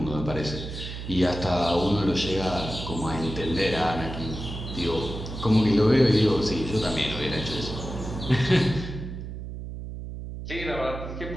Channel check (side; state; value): right; noise; hum, 8 dB below the sound